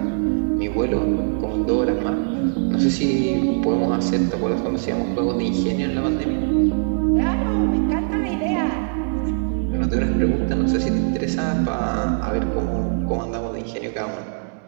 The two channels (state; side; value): silent; left; 64 dB below the other